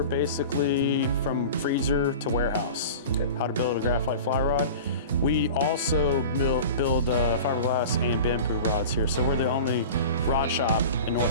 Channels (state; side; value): inverted; both; correlation -0.35